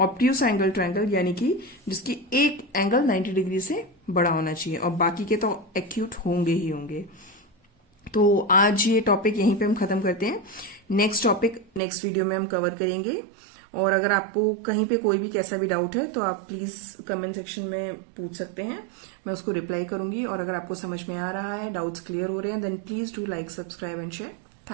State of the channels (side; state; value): left; drops out; at 11.8 s